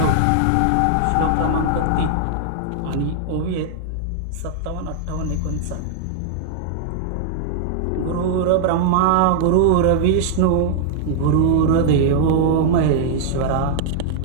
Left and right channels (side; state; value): both; different; correlation -0.01